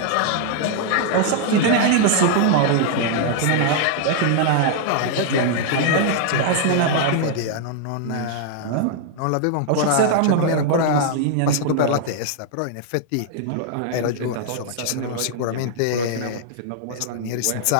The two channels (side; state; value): both; different; correlation 0.00